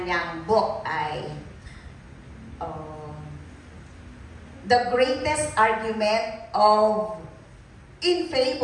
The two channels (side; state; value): both; identical; correlation 1.00